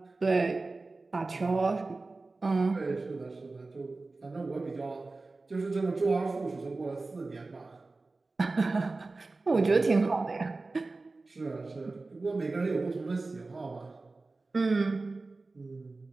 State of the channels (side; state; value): left; quieter; 3.5 dB